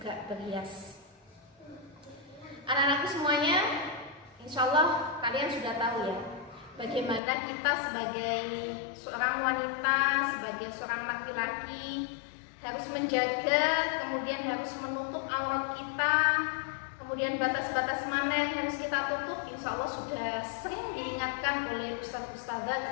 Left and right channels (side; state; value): right; drops out; at 7.2 s